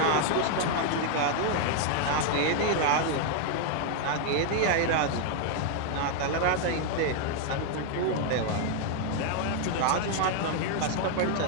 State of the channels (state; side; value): different; both; correlation 0.00